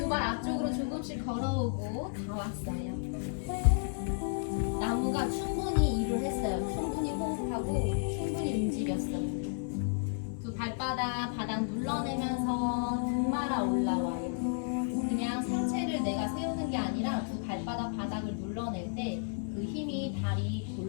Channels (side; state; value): right; silent; 56 dB below the other